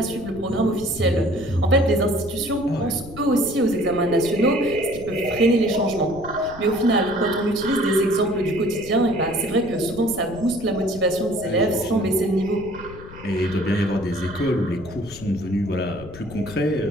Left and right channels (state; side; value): noise; left; rumble, 16 dB below the sound